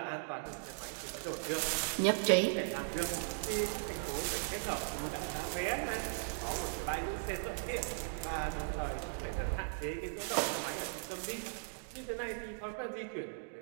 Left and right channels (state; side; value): silent; left; digital silence